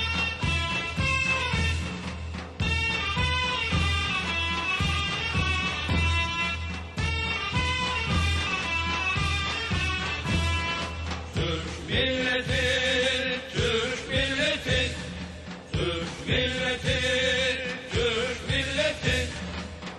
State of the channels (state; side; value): identical; both; correlation 1.00